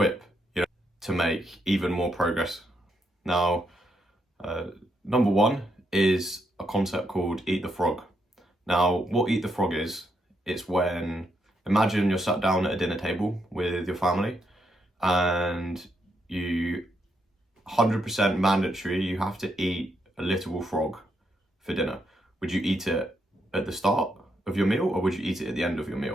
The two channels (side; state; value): both; normal; correlation 0.78